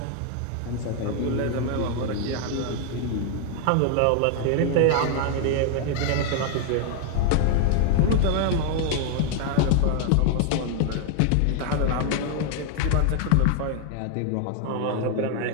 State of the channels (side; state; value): both; different; correlation 0.00